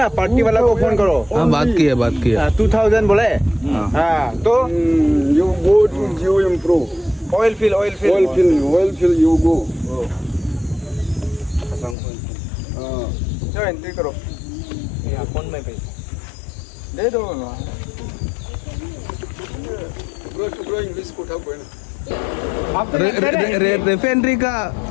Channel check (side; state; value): right; drops out; at 12.0 s